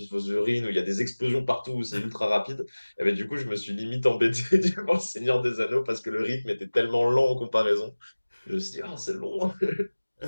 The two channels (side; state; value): both; inverted; correlation -1.00